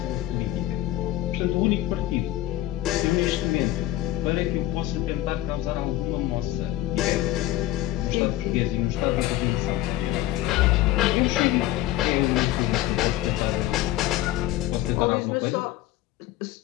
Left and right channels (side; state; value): right; quieter; 14.7 dB